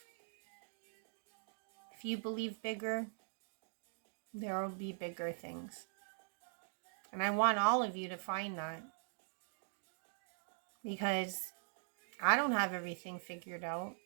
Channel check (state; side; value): silent; left; digital silence